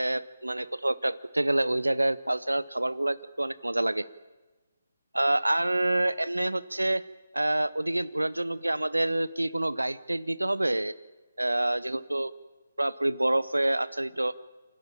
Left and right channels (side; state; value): both; inverted; correlation -0.99